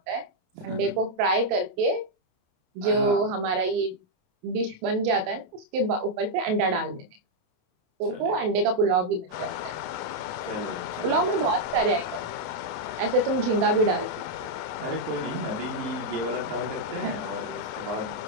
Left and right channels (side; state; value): left; late; 28 ms